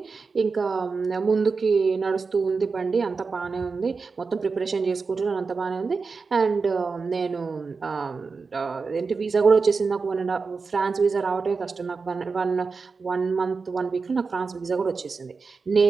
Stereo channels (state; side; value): quieter; left; 4.6 dB